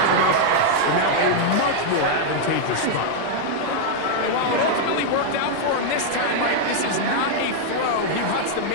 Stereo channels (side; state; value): both; different; correlation 0.00